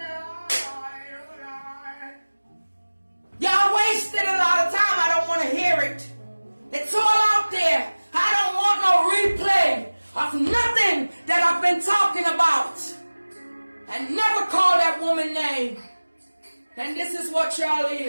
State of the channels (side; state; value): both; inverted; correlation -1.00